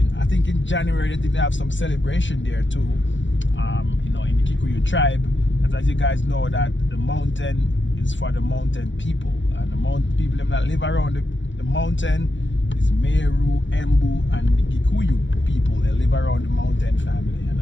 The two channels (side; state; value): right; late; 0.54 ms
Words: I think in January they have some celebration there too, in the Kikuyu tribe. Because as you guys know that the mountain is for the mountain people, and the mountain people that live around the mountain is Meru, Embu, and the Kikuyu people. They live around the mountain family, and